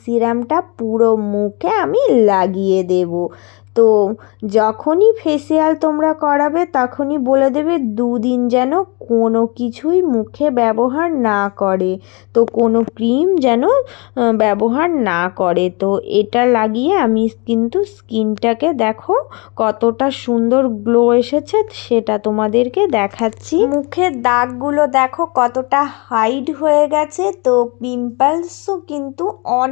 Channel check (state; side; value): quieter; right; 29.5 dB